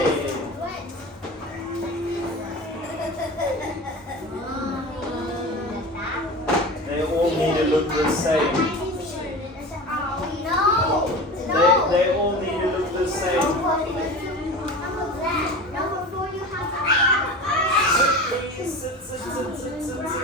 They all need to look the same. They all need to look the same. Please sit, sit, sit, sit, sit,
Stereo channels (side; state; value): both; normal; correlation 0.33